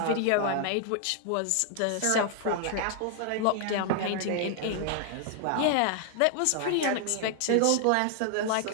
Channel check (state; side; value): different; both; correlation 0.00